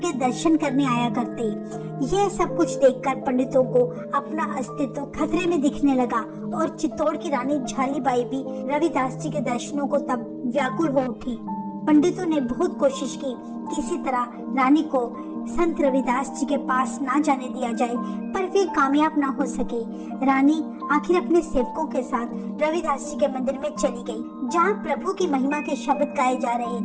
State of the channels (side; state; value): both; identical; correlation 1.00